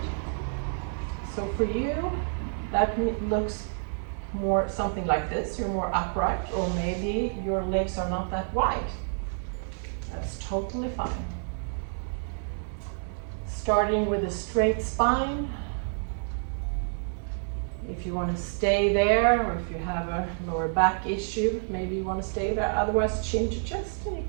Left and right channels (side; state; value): left; silent; digital silence